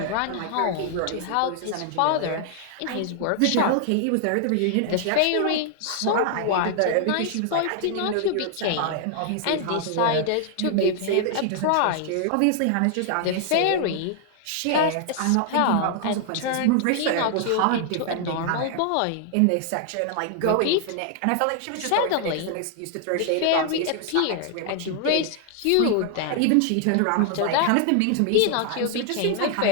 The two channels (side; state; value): both; different; correlation 0.00